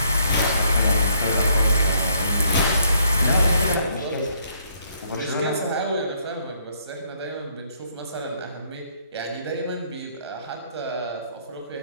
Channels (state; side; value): inverted; both; correlation -0.68